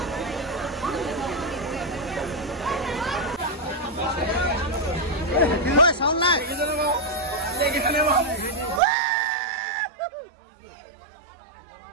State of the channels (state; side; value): drops out; left; at 8.8 s